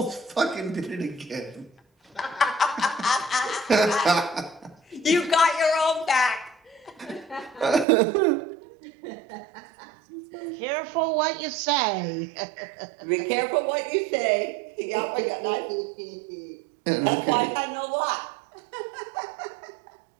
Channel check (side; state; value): left; drops out; at 7.9 s